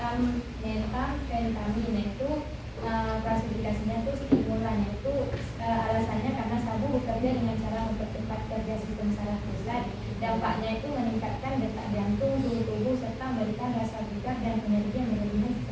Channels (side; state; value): both; identical; correlation 1.00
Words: itu klasifikasinya itu stimulan, itu alasannya karena sabu bekerja dengan cara mempercepat kerja sistem saraf pusat. Dampaknya itu meningkatkan detak jantung, suhu tubuh, serta memberikan rasa bugar dan energi yang berlebihan